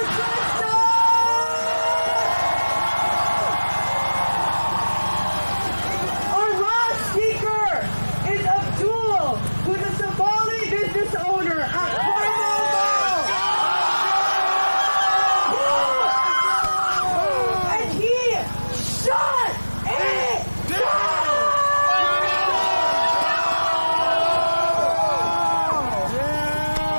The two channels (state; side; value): inverted; both; correlation -1.00